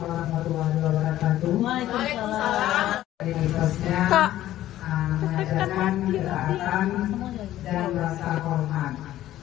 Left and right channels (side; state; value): right; quieter; 13.7 dB